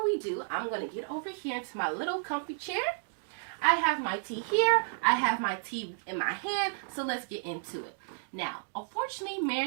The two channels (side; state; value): left; silent; digital silence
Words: we do, I'm going to get over here into my little comfy chair. I have my tea here. I have my tea in my hand, so let's get into it. Now, unfortunately,